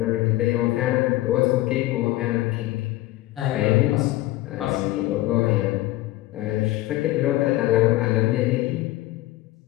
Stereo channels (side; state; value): right; quieter; 17.0 dB